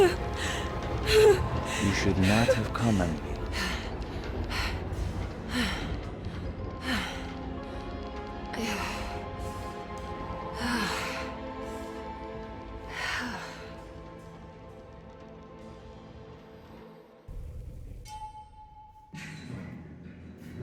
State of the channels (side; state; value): both; identical; correlation 1.00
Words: You should not have come, Emily.